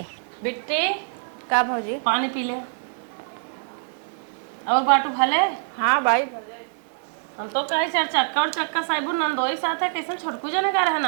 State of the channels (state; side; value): silent; left; 59 dB below the other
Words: बिट्टी का भौजी पानी पी ले और बाटू भले। हाँ भाई हम तो कहे चार चक्का और चक्का साइबू नंदोई साथ है कैसे छोटकू जने का